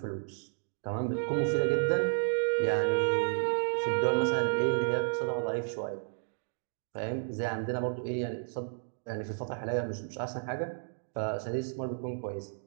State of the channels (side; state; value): left; silent; digital silence